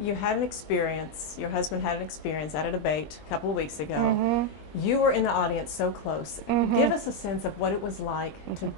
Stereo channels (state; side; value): late; right; 20 ms